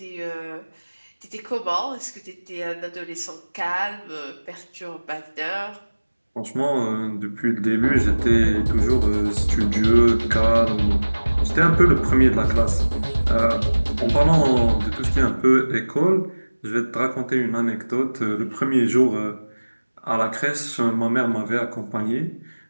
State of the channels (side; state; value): both; inverted; correlation -1.00